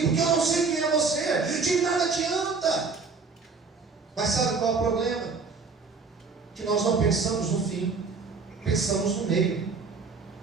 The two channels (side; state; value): left; quieter; 4.6 dB